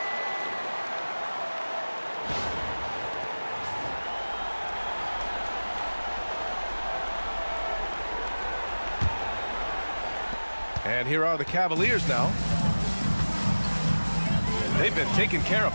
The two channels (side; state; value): both; inverted; correlation -1.00